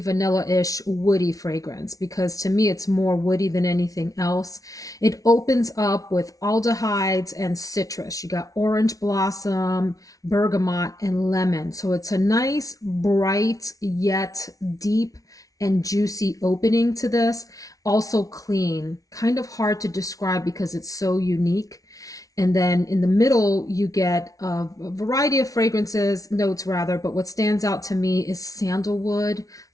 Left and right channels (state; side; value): late; right; 0.17 ms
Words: vanilla-ish, woody fragrance because to me it's more woody than anything else. It opens up with aldehydes and citrus. You got orange blossom, bergamot, and lemon. So it's a nice, bright, yet deep and juicy opening to this. Also clean, kind of hard to describe because it's so unique. And then in the middle, you get a variety of fragrances, notes rather, but what stands out to me is sandalwood